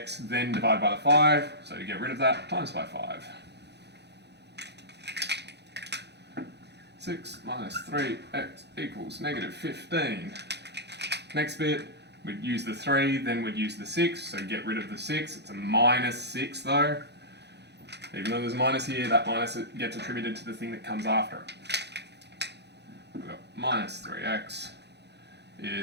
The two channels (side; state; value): left; late; 0.49 ms